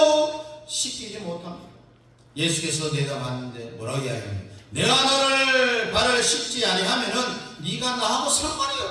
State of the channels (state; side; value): identical; both; correlation 1.00